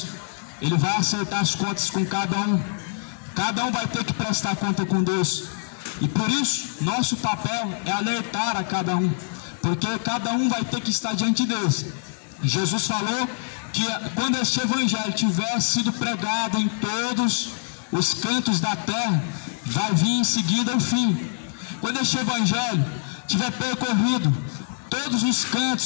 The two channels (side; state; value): right; silent; digital silence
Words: Ele vai acertar as contas com cada um. Cada um vai ter que prestar conta com Deus. E por isso, nosso papel é alertar a cada um, porque cada um vai ter que estar diante de Deus. Jesus falou que quando este evangelho tiver sido pregado em todos os cantos da terra, vai vir em seguida o fim. Quando este evangelho tiver percorrido todos os